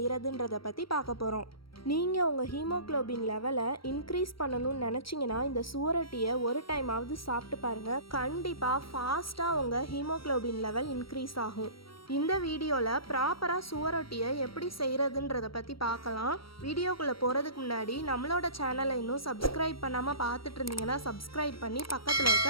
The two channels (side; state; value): right; late; 0.75 ms